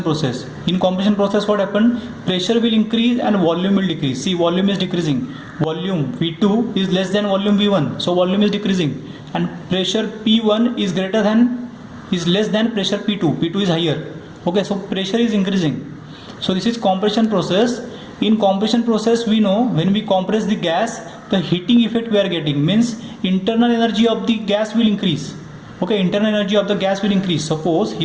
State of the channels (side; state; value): both; identical; correlation 1.00